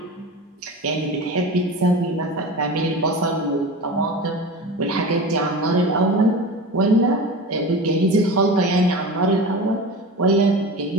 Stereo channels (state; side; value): normal; both; correlation 0.31